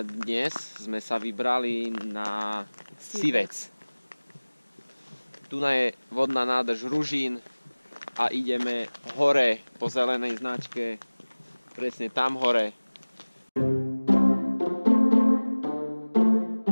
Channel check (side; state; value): both; inverted; correlation -1.00